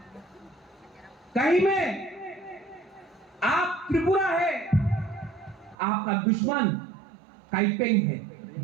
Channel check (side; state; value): left; drops out; at 5.8 s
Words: कहीं में आप त्रिपुरा है, आपका दुश्मन काइपेंग है,